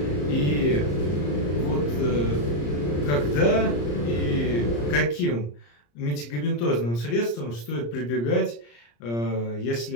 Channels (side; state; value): right; late; 34 ms